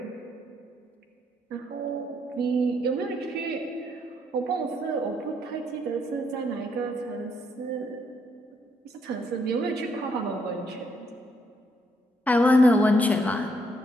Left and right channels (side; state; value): both; normal; correlation 0.73